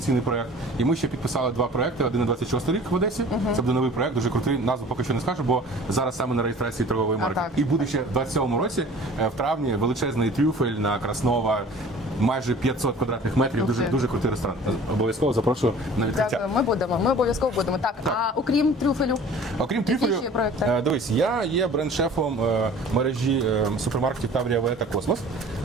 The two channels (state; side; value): normal; both; correlation 0.45